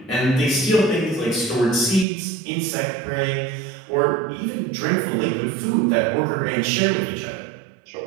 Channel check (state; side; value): drops out; left; at 2.1 s